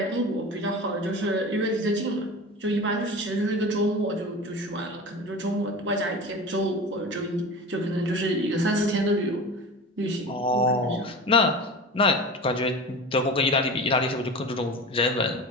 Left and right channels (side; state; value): both; normal; correlation 0.32